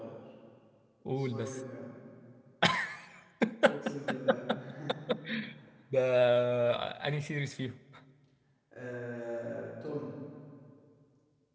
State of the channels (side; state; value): both; identical; correlation 1.00